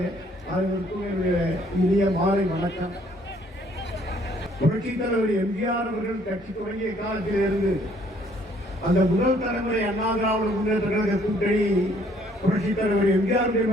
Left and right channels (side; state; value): both; normal; correlation 0.63